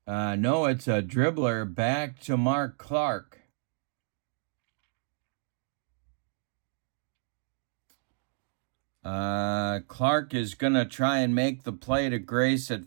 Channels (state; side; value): silent; left; digital silence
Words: No, it's a dribbler back to Mark Clark. Clark is going to try and make the play to Grace